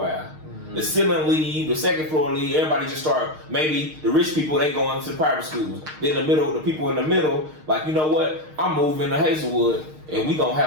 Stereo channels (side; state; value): left; late; 6.5 ms